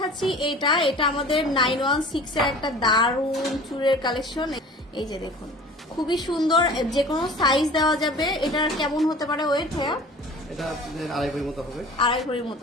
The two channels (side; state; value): both; normal; correlation 0.43